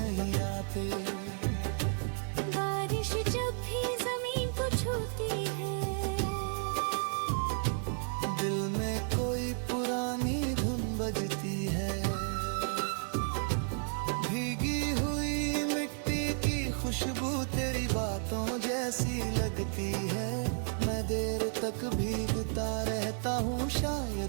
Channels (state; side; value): silent; left; 56 dB below the other